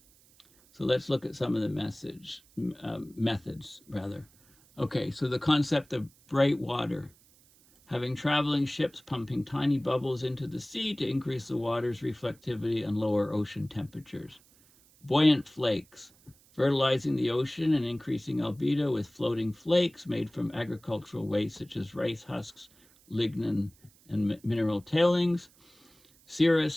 So let's look at some of the methods, rather. Okay, so the concept of bright water. Having traveling ships pumping tiny bubbles into the sea to increase the water's reflectivity and lower ocean temperatures. Buoyant flakes. Fertilizing the ocean and increasing albedo with floating flakes made from agricultural waste such as rice husks, lignin, and mineral tailings.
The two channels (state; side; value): noise; right; hiss, 29 dB below the sound